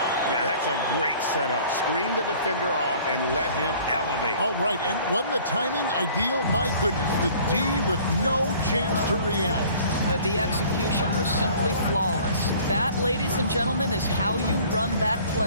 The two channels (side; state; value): both; inverted; correlation -0.51